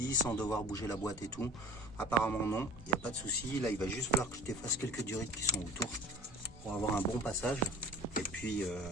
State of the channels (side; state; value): both; normal; correlation 0.42